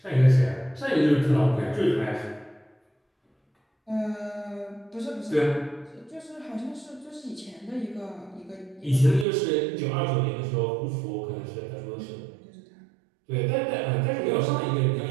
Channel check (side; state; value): left; drops out; at 9.2 s